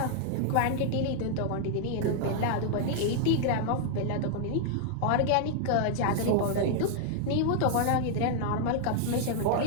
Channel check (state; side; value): different; both; correlation 0.00